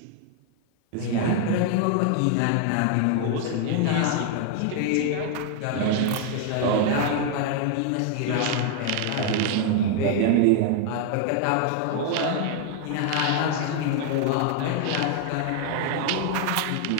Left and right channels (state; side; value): different; both; correlation 0.00